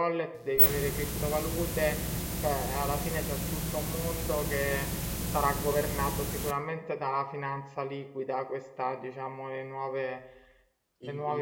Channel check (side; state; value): both; identical; correlation 1.00